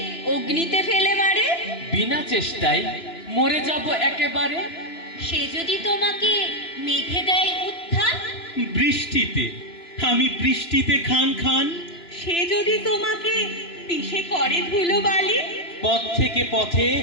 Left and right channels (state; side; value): late; right; 2.9 ms